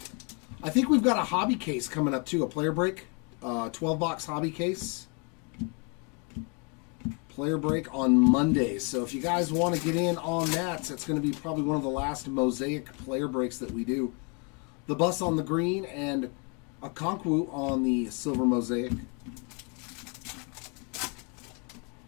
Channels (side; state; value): right; quieter; 34.7 dB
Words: I think we've got a hobby case coming up, too. A player break. 12-box hobby case. Player break on Monday. So if you guys want to get in on that, it's going to be probably one of the last Mosaic player breaks that we do. The Bus on the green and a Okonkwo on the silver Mosaic.